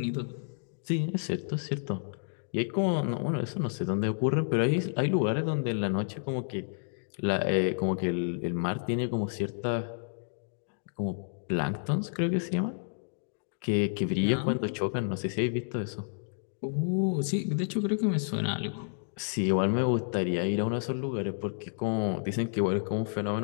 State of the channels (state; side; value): silent; right; digital silence